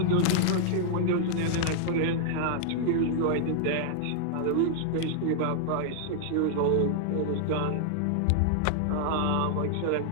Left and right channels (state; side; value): different; both; correlation 0.00